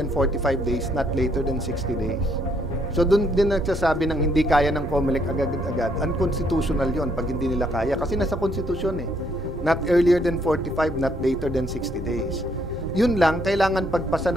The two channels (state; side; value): normal; both; correlation 0.70